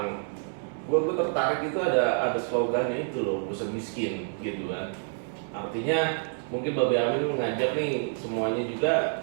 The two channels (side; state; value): left; silent; digital silence